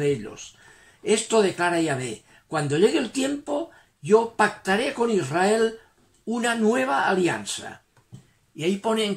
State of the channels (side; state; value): both; identical; correlation 1.00